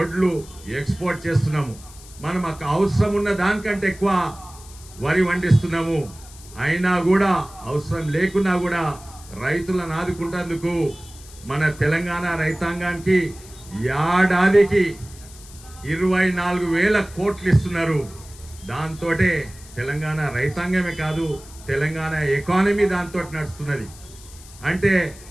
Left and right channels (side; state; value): left; noise; hiss, 20 dB below the sound